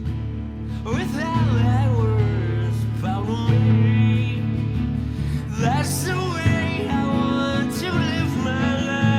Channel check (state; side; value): identical; both; correlation 1.00